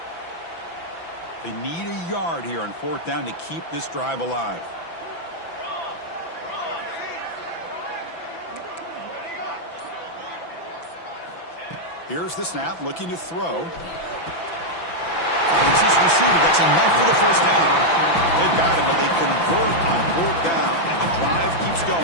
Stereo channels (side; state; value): right; late; 6.0 ms